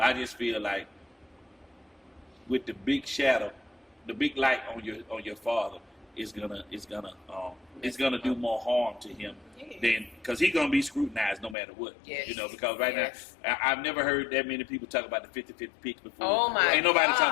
I just feel like with the big shadow, the big light on your father is gonna do more harm to him than, because he's gonna be scrutinized no matter what. Yes. Because right Yes. now I've never heard that many people talk about the 50-50 picks before. Oh my Ain't nobody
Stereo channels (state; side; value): drops out; right; at 11.6 s